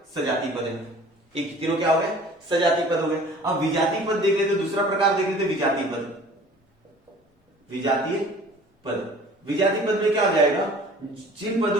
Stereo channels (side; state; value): both; normal; correlation 0.47